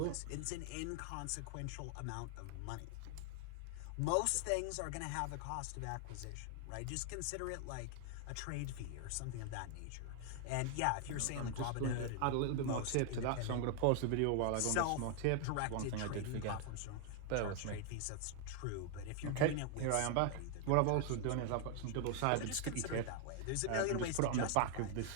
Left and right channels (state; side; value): different; both; correlation 0.00